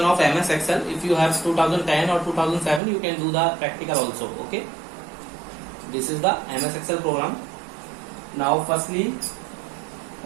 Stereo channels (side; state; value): left; drops out; at 2.8 s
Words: of MS Excel. If you have 2010 or 2007, you can do the practical also. Okay, this is the MS Excel program. Now firstly,